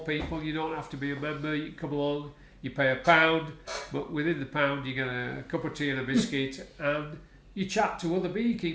You don't have to be a member. You can come along, you pay £1, but within the £1 you get a cup of tea and a biscuit, and you chat to other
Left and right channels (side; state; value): both; identical; correlation 1.00